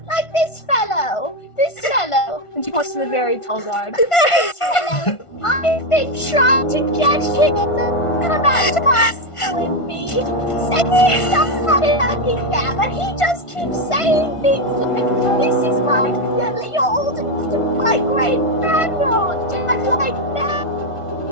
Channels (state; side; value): late; right; 1.5 ms